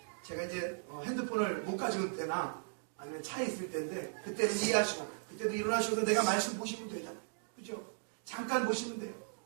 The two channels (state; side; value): silent; left; digital silence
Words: 제가 이제 핸드폰을 못 가져올 때나 아니면 차에 있을 때인데 그때는 이해하시고 그때도 일어나셔서 내가 말씀 보시면 되잖아요. 그죠? 잠깐 보시면 돼요.